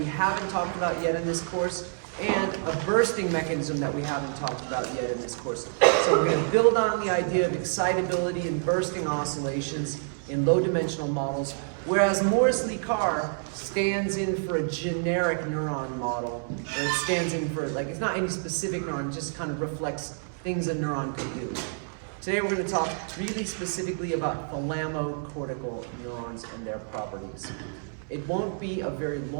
haven't talked about yet in this course, and a bursting mechanism that we haven't talked about yet in this course. So we're going to build on the idea of excitability and bursting oscillations in low-dimensional models, whereas Morris-Lee Carr stands in for a generic neuron model, or it stands in for, like, it's not any specific neuron, it just kind of reflects things a neuron can do. Today we're going to talk really specifically about thalamocortical neurons and their properties. It won't be a very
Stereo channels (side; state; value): left; silent; 59 dB below the other